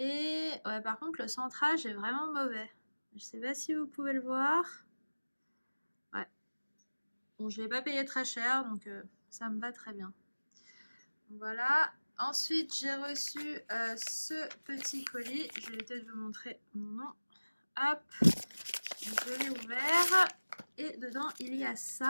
ouais, par contre, le centrage est vraiment mauvais. Je sais pas si vous pouvez le voir. Ouais. Bon, je l'ai pas payé très cher, donc ça me va très bien. Voilà. Ensuite, j'ai reçu ce petit colis. Je vais peut-être vous montrer mon nom. Hop. Je l'ai ouvert. Et dedans, il y a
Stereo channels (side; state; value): both; inverted; correlation -1.00